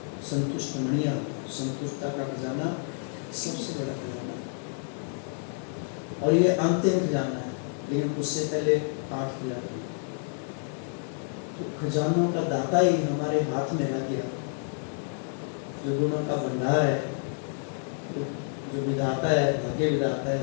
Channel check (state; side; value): silent; right; 59 dB below the other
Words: संतुष्ट मणियाँ, संतुष्टता का खजाना सबसे बड़ा खजाना है और ये अंतिम खजाना है, लेकिन उससे पहले 8 खजाना। तो खजानों का दाता ही हमारे हाथ में लग गया। जो गुणों का भंडार है, जो विधाता है, भाग्य विधाता